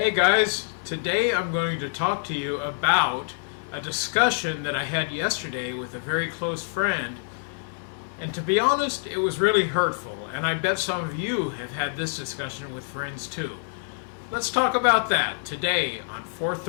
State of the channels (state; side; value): silent; right; digital silence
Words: guys, today I'm going to talk to you about a discussion that I had yesterday with a very close friend. And to be honest, it was really hurtful, and I bet some of you have had this discussion with friends too. Let's talk about that today on